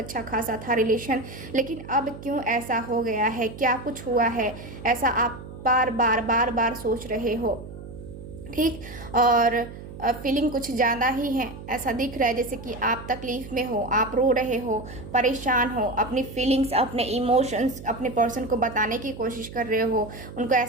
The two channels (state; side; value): noise; right; hum, 13 dB below the sound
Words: खासा था रिलेशन, लेकिन अब क्यों ऐसा हो गया है, क्या कुछ हुआ है, ऐसा आप बार बार सोच रहे हो। ठीक, और फीलिंग कुछ ज़्यादा ही है, ऐसा दिख रहा है जैसे कि आप तकलीफ़ में हो, आप रो रहे हो, परेशान हो, अपनी फीलिंग्स, अपने इमोशंस अपने पर्सन को बताने की कोशिश कर रहे हो, उनको